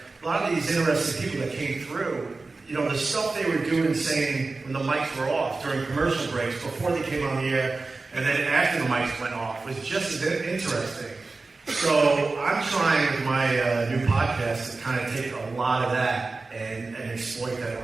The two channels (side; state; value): left; quieter; 3.7 dB